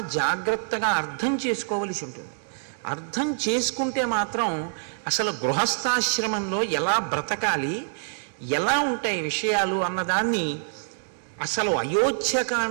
జాగ్రత్తగా అర్థం చేసుకోవలసి ఉంటుంది. అర్థం చేసుకుంటే మాత్రం అసలు గృహస్థాశ్రమంలో ఎలా బ్రతకాలి, ఎలా ఉంటాయి విషయాలు అన్నదాన్ని అసలు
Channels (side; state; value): left; silent; digital silence